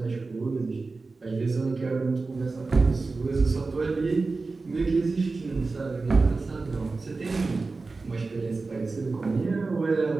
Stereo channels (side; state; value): left; quieter; 3.8 dB